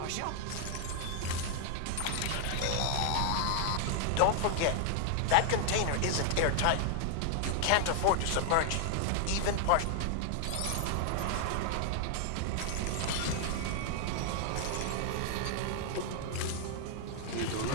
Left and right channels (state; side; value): different; both; correlation 0.00